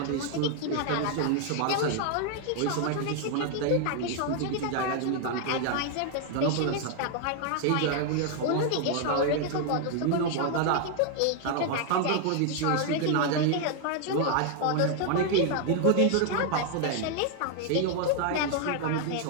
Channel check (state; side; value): different; both; correlation 0.00